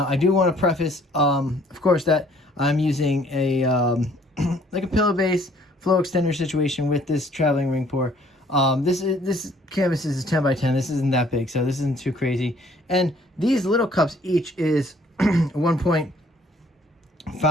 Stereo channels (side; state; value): both; normal; correlation 0.60